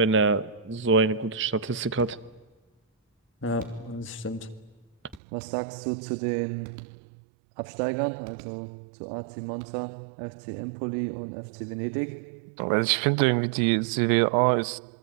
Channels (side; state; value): left; drops out; at 5.2 s